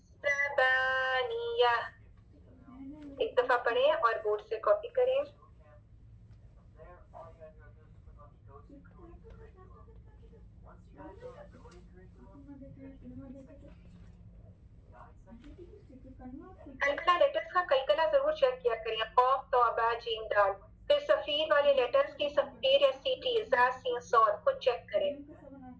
ज़बानिया एक दफा पढ़ें और बोर्ड से कॉपी करें। कलकला लेटर्स का कलकला जरूर चेक किया करें, कॉफ तौबा जीम दाल। फिर सफीर वाले लेटर्स की सफीर या सीटी जा सीन सॉद को चेक करें।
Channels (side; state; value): both; identical; correlation 1.00